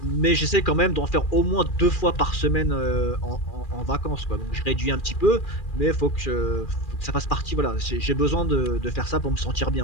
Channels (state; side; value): late; right; 2.4 ms